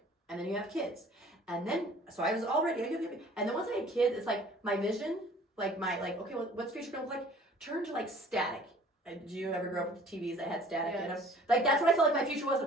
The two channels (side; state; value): both; normal; correlation 0.51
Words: And then you have kids. And then, so I was already, and then once I had kids, it's like my vision, like okay, what's future gonna look like? Turned to like static. Did you ever grow up with TVs that had static in them? Like that's what I felt like my future